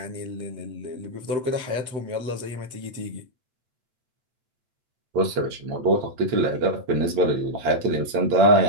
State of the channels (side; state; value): left; late; 8.7 ms